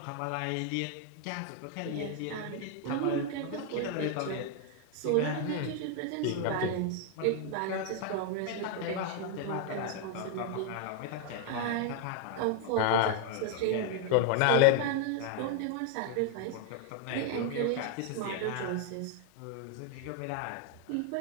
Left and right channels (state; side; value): different; both; correlation 0.00